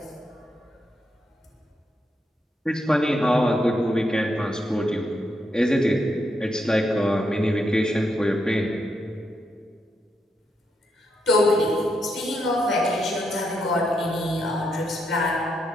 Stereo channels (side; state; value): both; normal; correlation 0.81